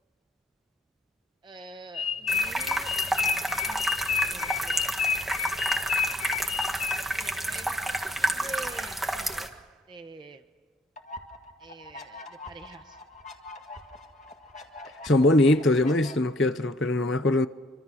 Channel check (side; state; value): both; normal; correlation 0.63